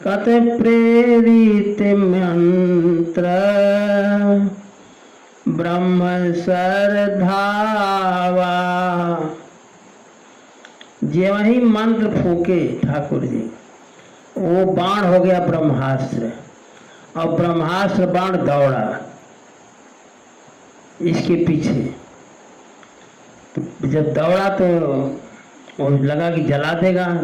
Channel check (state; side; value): identical; both; correlation 1.00